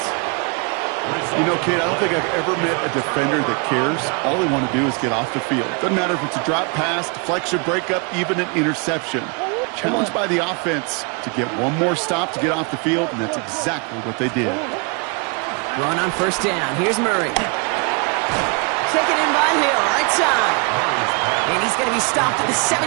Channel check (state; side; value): quieter; left; 33.7 dB